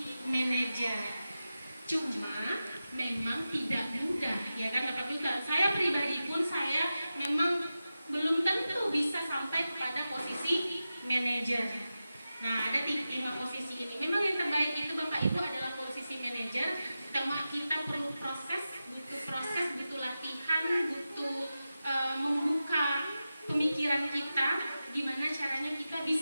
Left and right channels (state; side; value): inverted; both; correlation -0.93